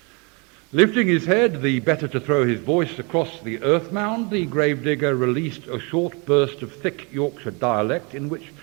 Lifting his head, the better to throw his voice across the earth mound, the gravedigger released a short burst of thick Yorkshire dialect in which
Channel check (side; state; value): left; quieter; 31.3 dB